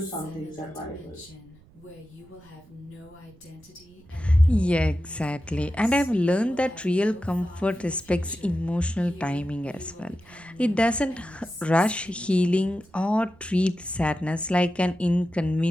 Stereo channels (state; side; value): noise; right; rumble, 27 dB below the sound